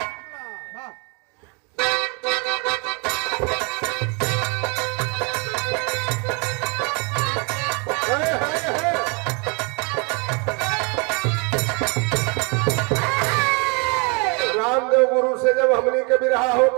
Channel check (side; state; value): left; quieter; 32.7 dB